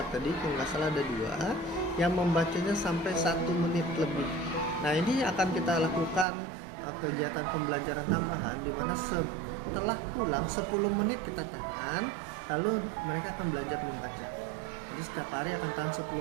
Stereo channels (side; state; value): left; drops out; at 6.2 s